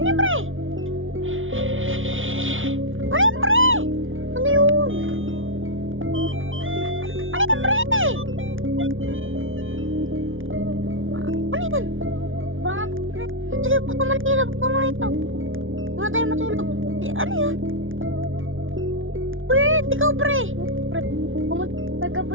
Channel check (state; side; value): late; left; 0.57 ms